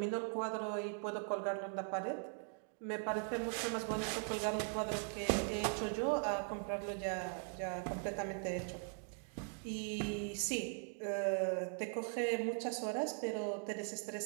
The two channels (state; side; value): silent; left; 51 dB below the other